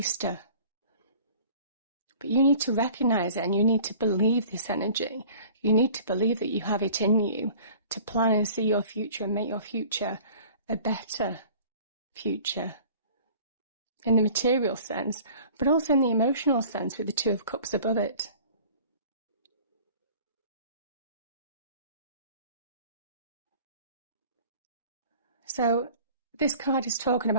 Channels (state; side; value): inverted; both; correlation -0.48